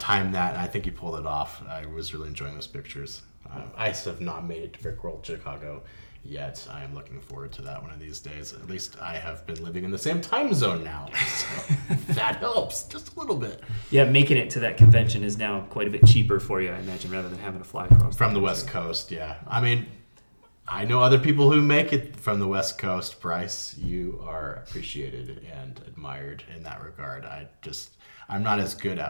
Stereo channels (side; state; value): both; inverted; correlation -1.00